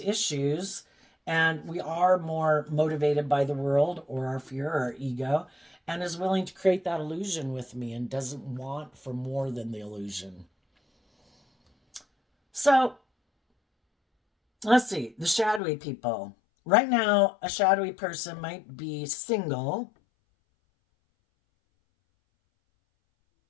and we are more motivated by the world or our fear or our ego, and is willing to create that illusion with me and doesn't want for more than the illusion. So let's see, the shadowy people. Right now, a shadowy person might be single.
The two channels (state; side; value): drops out; right; at 15.6 s